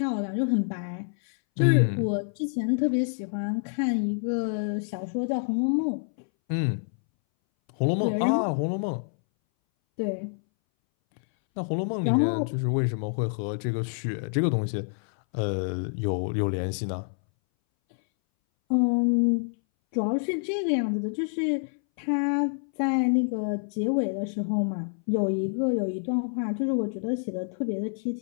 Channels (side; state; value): right; silent; 60 dB below the other